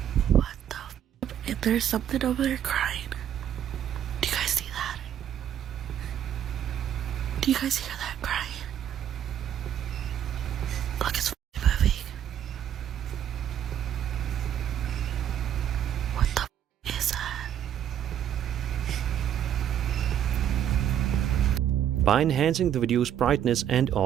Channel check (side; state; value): left; quieter; 10.1 dB